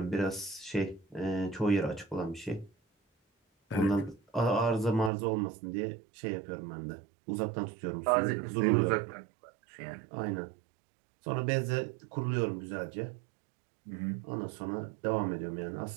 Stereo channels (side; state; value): left; drops out; at 5.1 s